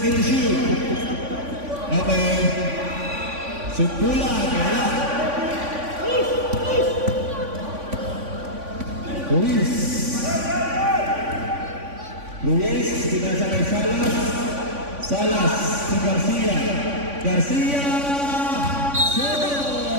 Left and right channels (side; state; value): left; late; 3.5 ms